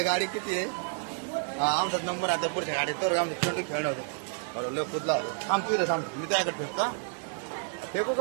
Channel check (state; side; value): silent; left; 58 dB below the other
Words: गाडी किती आहे आमचा नंबर आता पुढच्या गाडीत तर आमचं चेंडू खेळणं होतं बरोबर लय कुदला होतो थांब मी त्याकडे फेकतो फेकू